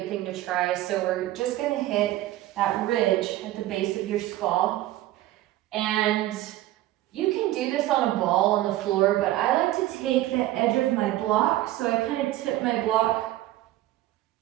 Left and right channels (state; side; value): quieter; left; 15.3 dB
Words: thing to try. So we're just going to hit that ridge at the base of your skull. And you can do this on a ball on the floor, but I like to take the edge of my block, so I kind of tip my block